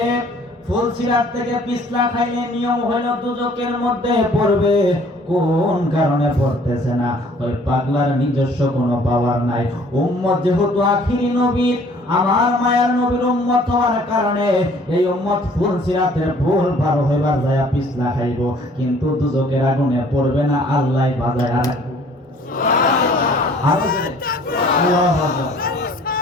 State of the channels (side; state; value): both; normal; correlation 0.55